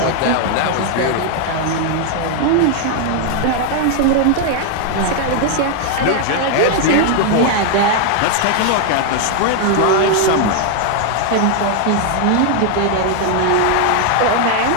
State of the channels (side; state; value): both; different; correlation 0.00